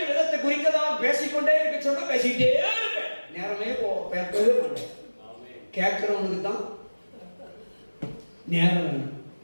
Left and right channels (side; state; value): both; inverted; correlation -1.00